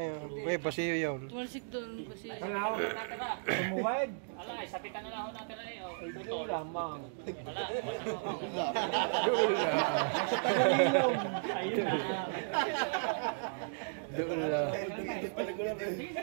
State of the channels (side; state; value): left; silent; digital silence